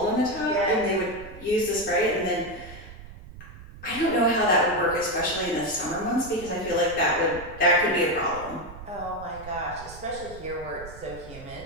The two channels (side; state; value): right; noise; rumble, 15 dB below the sound